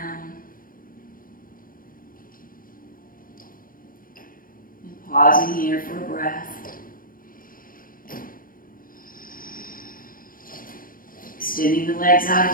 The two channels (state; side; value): late; right; 0.41 ms